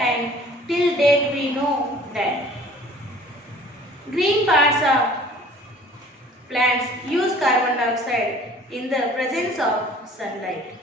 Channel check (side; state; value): both; normal; correlation 0.50